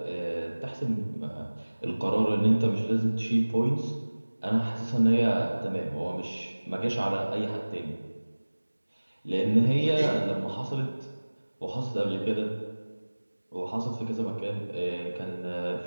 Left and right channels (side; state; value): both; inverted; correlation -1.00